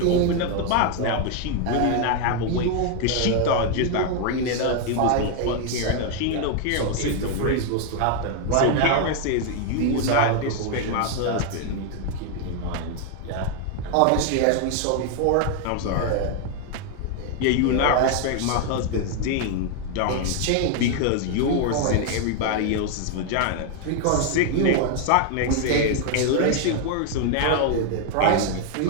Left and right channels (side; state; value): both; different; correlation 0.00